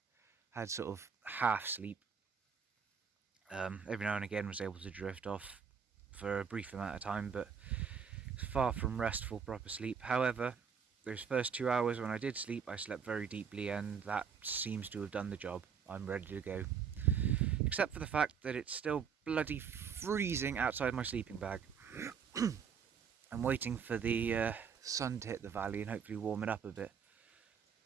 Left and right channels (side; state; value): left; quieter; 6.7 dB